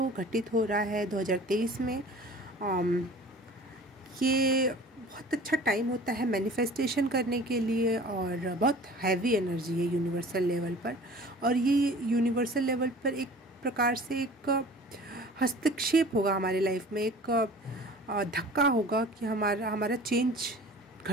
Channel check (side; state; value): both; normal; correlation 0.44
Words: घटित हो रहा है 2023 में। ये बहुत अच्छा टाइम होता है मैनिफेस्टेशन करने के लिए और बहुत हैवी एनर्जी है यूनिवर्सल लेवल पर। और ये यूनिवर्सल लेवल पर एक प्रकार से एक हस्तक्षेप होगा हमारे लाइफ में, एक धक्का होगा कि हमारा चेंज